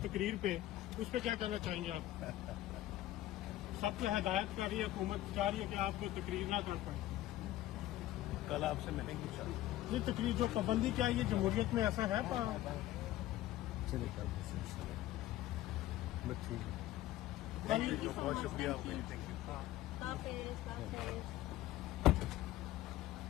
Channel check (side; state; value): right; quieter; 14.7 dB